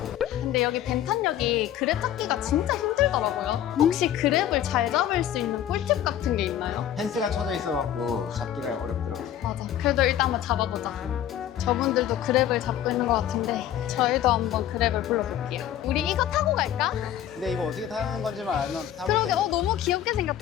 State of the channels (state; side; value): quieter; right; 11.1 dB